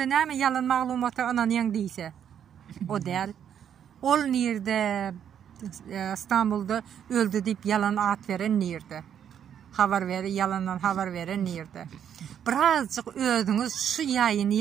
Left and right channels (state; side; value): quieter; left; 8.9 dB